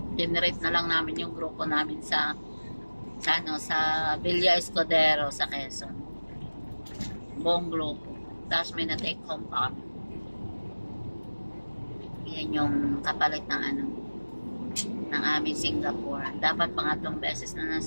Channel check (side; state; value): both; inverted; correlation -1.00